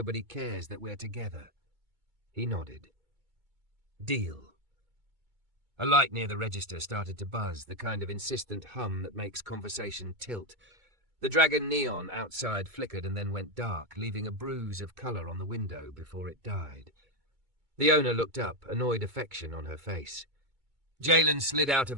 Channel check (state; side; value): late; left; 2.2 ms